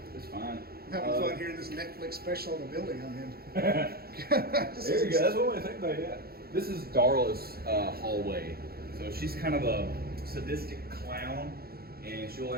It's fine. I'm having fun hearing this Netflix special of the building I'm in. There you go. That's what I think about. Yeah. This is Darla's hallway. So she's kind of a sadistic clown, and she'll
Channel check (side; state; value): left; late; 0.45 ms